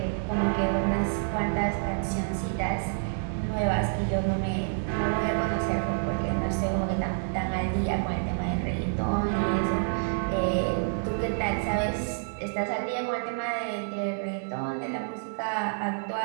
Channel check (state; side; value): silent; left; digital silence